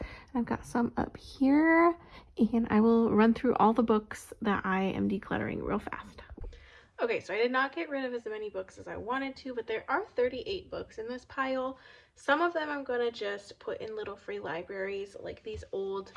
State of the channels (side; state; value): both; identical; correlation 1.00